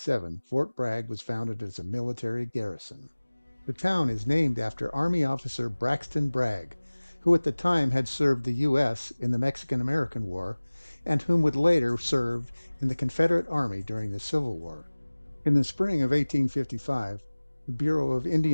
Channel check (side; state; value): both; inverted; correlation -1.00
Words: Fort Bragg was founded as a military garrison. The town is named after Army officer Braxton Bragg, who at the time had served the U.S. in the Mexican-American War, and whom would later serve in the Confederate Army during the Civil War. In the spring of 1855, the Bureau of